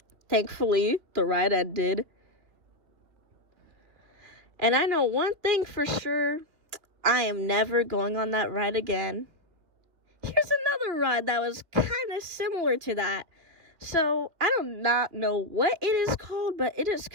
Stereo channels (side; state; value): left; late; 2.9 ms